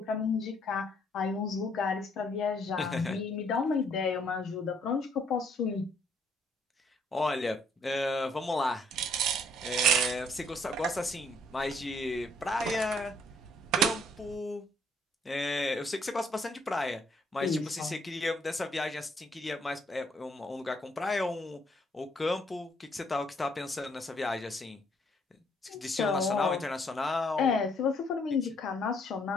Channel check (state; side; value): normal; both; correlation 0.66